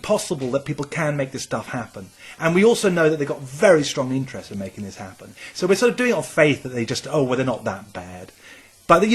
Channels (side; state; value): both; identical; correlation 1.00